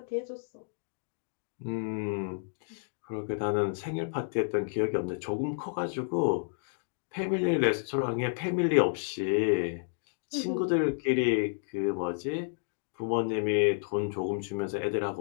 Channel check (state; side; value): silent; right; digital silence